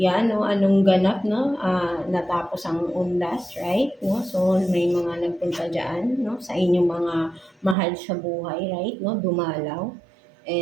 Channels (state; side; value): drops out; left; at 7.8 s